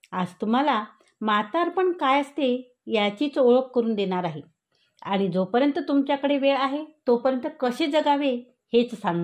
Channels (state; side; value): identical; both; correlation 1.00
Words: आज तुम्हाला म्हातारपण काय असते याचीच ओळख करून देणार आहे आणि जोपर्यंत तुमच्याकडे वेळ आहे तोपर्यंत कसे जगावे हेच